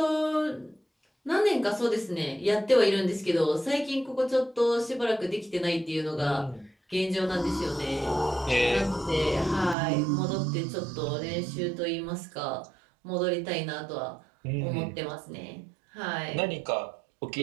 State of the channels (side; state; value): left; drops out; at 9.8 s